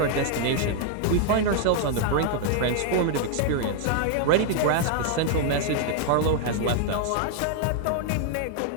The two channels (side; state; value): both; different; correlation 0.00